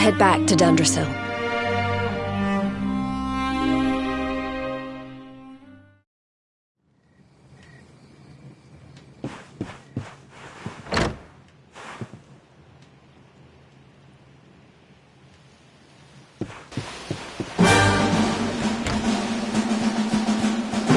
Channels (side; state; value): both; identical; correlation 1.00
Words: back to Dundrasil.